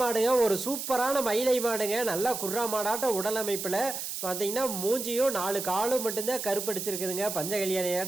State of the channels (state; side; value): noise; right; hiss, 5 dB below the sound